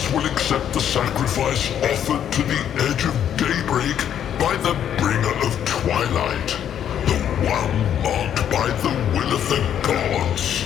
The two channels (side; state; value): right; quieter; 9.6 dB